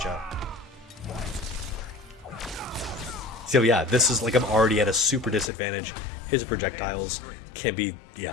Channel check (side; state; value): right; drops out; at 5.5 s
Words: So yeah, this is like I'm already at a super disadvantage. His projectiles can be,